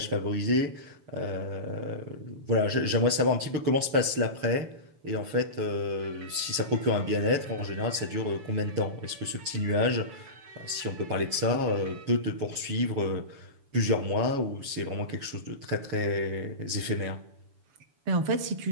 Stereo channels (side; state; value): left; late; 6.9 ms